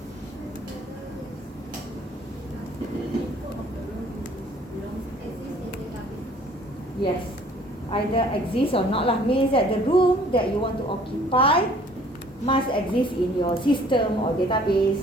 Yes, either exists or not lah. Means that the room that you want to occupy must exist in your system or database,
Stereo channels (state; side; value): normal; both; correlation 0.55